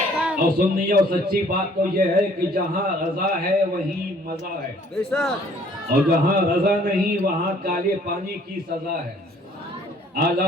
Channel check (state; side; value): normal; both; correlation 0.58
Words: اور سننی اور سچی بات تو یہ ہے کہ جہاں رضا ہے وہیں مزہ ہے، اور جہاں رضا نہیں وہاں کالے پانی کی سزا ہے.